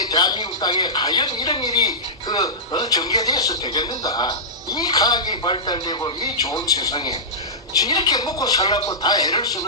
대한민국 땅에 과연 이런 일이 전개돼서 되겠는가? 이 과학이 발달되고 이 좋은 세상에 이렇게 먹고 살라고 다 애를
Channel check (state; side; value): normal; both; correlation -0.15